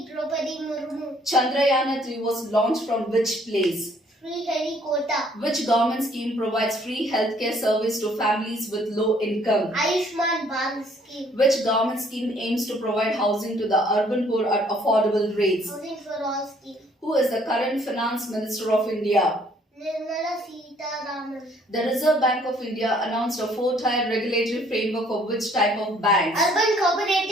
Draupadi Murmu. Chandrayaan-3 was launched from which place? Sriharikota. Which government scheme provides free healthcare service to families with low income? Ayushman Bharat scheme. Which government scheme aims to provide housing to the urban poor at affordable rates? Housing for all scheme. Who is the current finance minister of India? Nirmala Sitharaman. The Reserve Bank of India announced a 4-tier regulatory framework for which type of banks? Urban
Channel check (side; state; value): both; normal; correlation 0.62